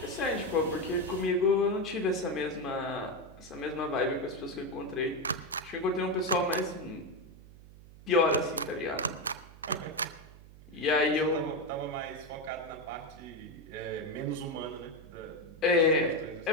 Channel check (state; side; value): noise; right; hum, 19 dB below the sound